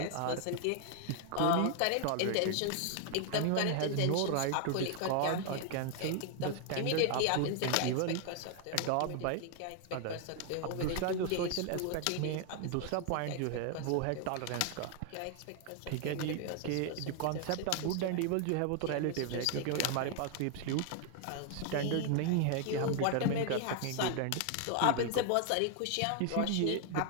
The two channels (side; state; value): both; different; correlation 0.00